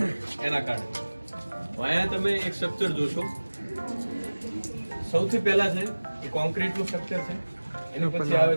એના કારણે। અહીંયા તમે એક સ્ટ્રક્ચર જોશો, સૌથી પહેલા છે એ કોન્ક્રીટનું સ્ટ્રક્ચર છે, એની પછી આવે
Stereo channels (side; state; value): both; inverted; correlation -1.00